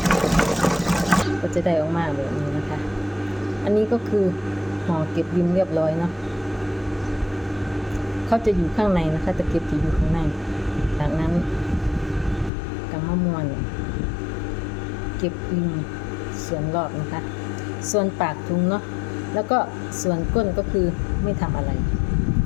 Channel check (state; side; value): drops out; right; at 12.5 s